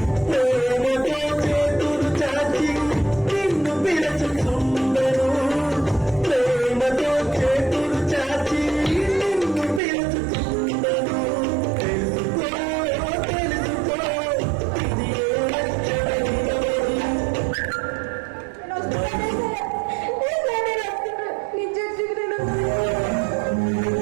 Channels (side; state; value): left; drops out; at 9.8 s